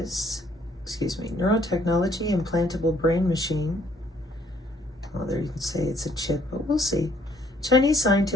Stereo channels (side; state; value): both; normal; correlation 0.65